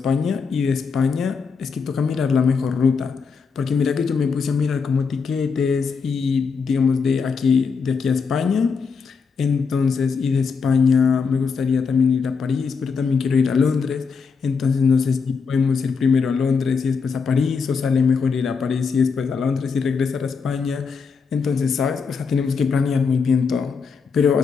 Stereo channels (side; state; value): right; quieter; 5.4 dB